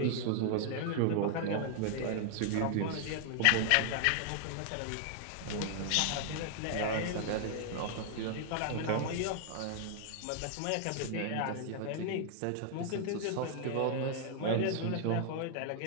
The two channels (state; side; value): different; both; correlation 0.00